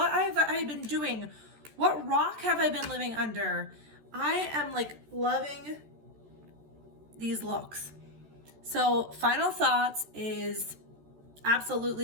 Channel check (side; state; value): left; late; 14 ms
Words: have I been doing? What rock have I been living under? I am like loving these looks. So final thoughts is